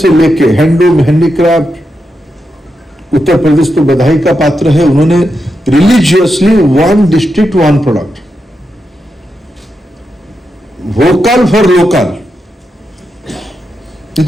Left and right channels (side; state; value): both; normal; correlation 0.86